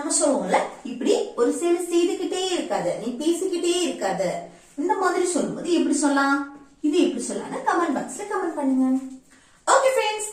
சொல்லுவோம்ல இப்படி ஒரு செயல் செய்துகிட்டே இருக்காத, நீ பேசிக்கிட்டே இருக்காத. இந்த மாதிரி சொல்லும்போது எப்படி சொல்லலாம்? இது எப்படி சொல்லலாம்னு கமெண்ட் பாக்ஸ்ல கமெண்ட் பண்ணுங்க. ஓகே ஃப்ரெண்ட்ஸ்,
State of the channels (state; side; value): identical; both; correlation 1.00